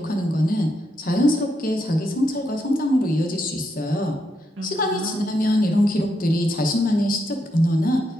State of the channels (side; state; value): both; normal; correlation 0.80